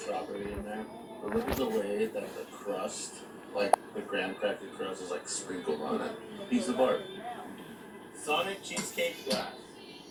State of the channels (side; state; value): both; identical; correlation 1.00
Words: in there. But look at the way that the crust, like the graham cracker crust, is like sprinkled on it. Piece of art. Sonic cheesecake glass.